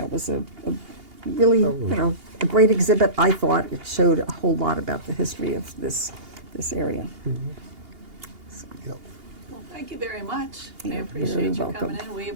a really, a great exhibit. I thought it showed a whole lot about the history of this area. So. Yep. Well, thank you very much. I You're appreciate very you welcome. coming in. We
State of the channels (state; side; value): late; left; 2.8 ms